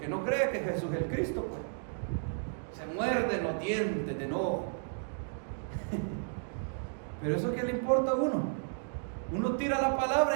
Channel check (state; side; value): silent; left; digital silence